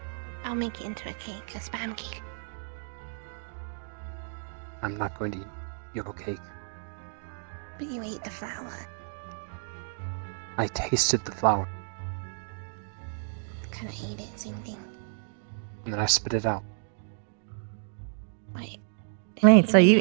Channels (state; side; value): silent; left; digital silence